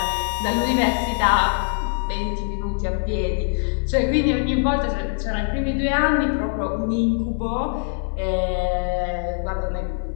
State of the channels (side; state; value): right; silent; 64 dB below the other